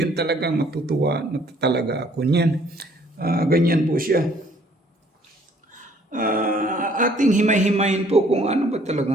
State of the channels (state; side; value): normal; both; correlation 0.61